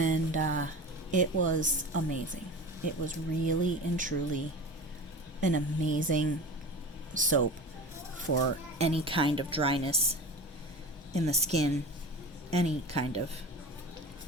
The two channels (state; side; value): normal; both; correlation 0.32